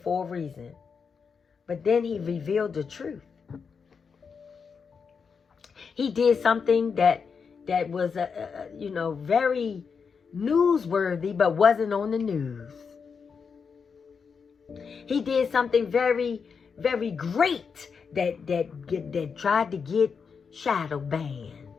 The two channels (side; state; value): right; quieter; 5.8 dB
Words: a reason. But then he revealed the truth. He did something that was, very newsworthy, but wasn't on the news. He did something very, very great that tried to get shadow banned.